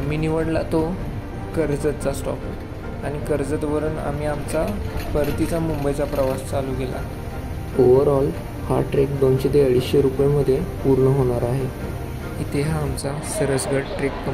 निवडला तो कर्जतचा स्टॉप आणि कर्जतवरून आम्ही आमचा परतीचा मुंबईचा प्रवास चालू केला. ओव्हरऑल हा ट्रेक 200 ते 250 रुपयेमध्ये पूर्ण होणार आहे. इथे हा आमचा सरसगड ट्रेक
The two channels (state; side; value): identical; both; correlation 1.00